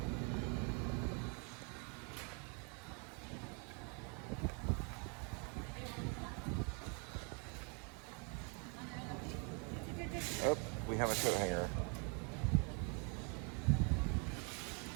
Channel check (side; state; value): left; quieter; 35.8 dB